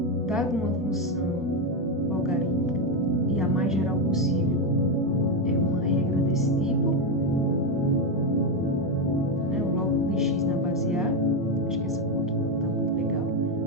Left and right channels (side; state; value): both; normal; correlation 0.08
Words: dado uma função logarítmica, e a mais geral possível é uma regra desse tipo, o log de x na base A, acho que essa foto não está muito legal,